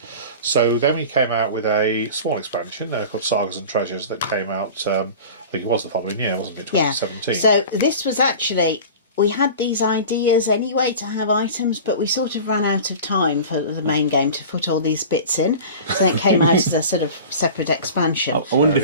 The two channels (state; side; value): inverted; both; correlation -0.36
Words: So then we came out with a small expansion called Sagas and Treasures that came out, I think it was the following year, wasn't it, 2017? Yeah. So this was actually, we had these ideas anyway to have items, but we sort of ran out of time for the main game to put all these bits in. So it came out as a sort of separate expansion. I wonder